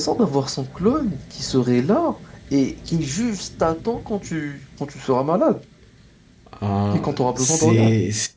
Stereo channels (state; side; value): identical; both; correlation 1.00